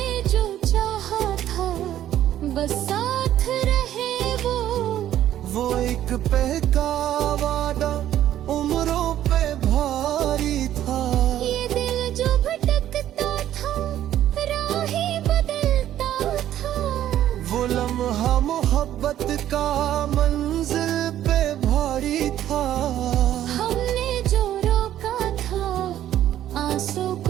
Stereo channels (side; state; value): left; quieter; 12.0 dB